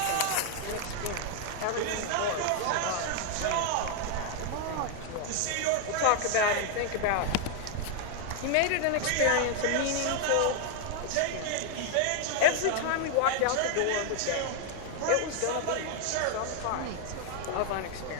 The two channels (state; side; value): different; both; correlation 0.00